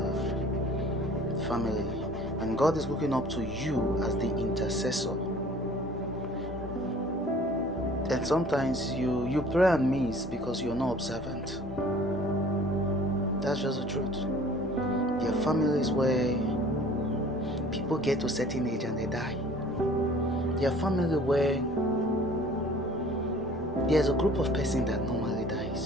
family, and God is looking up to you as the intercessor. And sometimes you pray and miss because you're not observant. That's just the truth. There are families where people get to a certain age and they die. There are families where there's a group of person that normally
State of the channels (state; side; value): normal; both; correlation 0.50